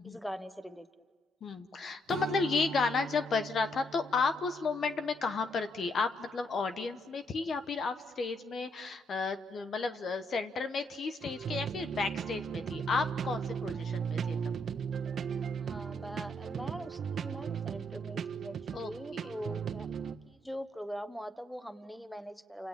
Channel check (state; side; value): normal; both; correlation 0.74